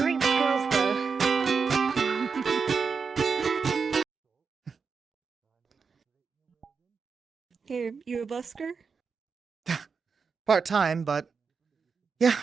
skills, though. Here, you a busker? Part-time, but yeah,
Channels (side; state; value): left; quieter; 5.4 dB